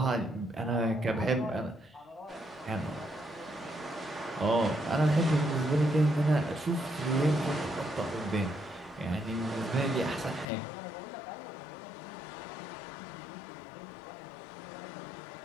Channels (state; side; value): drops out; right; at 10.5 s